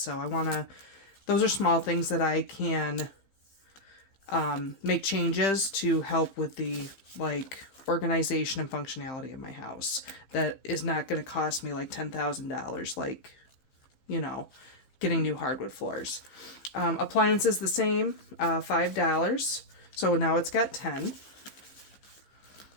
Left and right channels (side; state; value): right; late; 15 ms